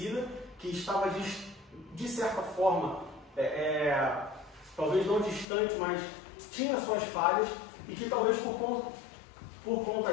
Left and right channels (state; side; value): drops out; right; at 5.5 s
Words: que estava de certa forma, talvez não distante, mas tinha suas falhas e que talvez por